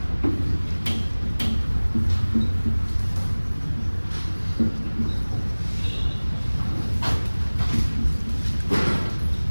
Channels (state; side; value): inverted; both; correlation -1.00